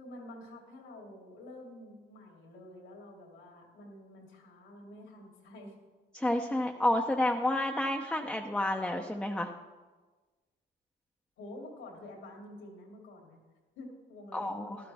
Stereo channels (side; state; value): both; normal; correlation 0.85